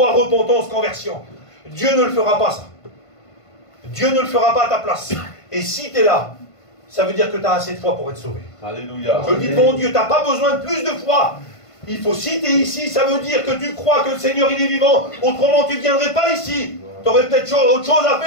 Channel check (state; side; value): late; right; 1.5 ms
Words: repentance, conversion. Dieu ne le fera pas, ça. Dieu ne le fera pas à ta place. Et si tu es là, ça veut dire que tu as assez de foi pour être sauvé. Alléluia. Je le dis devant Dieu, tu n'as pas besoin de plus de foi. Il faut, si tu es ici, ça veut dire que tu crois que le Seigneur, il est vivant. Autrement, tu ne viendrais pas ici. Tu aurais peut-être autre chose à